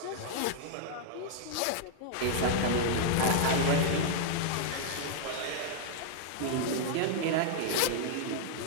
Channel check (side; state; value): both; different; correlation -0.01